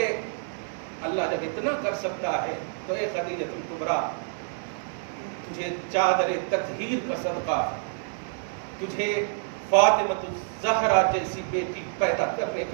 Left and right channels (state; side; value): silent; left; 60 dB below the other